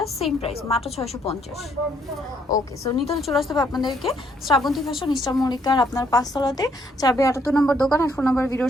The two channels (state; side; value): normal; both; correlation 0.70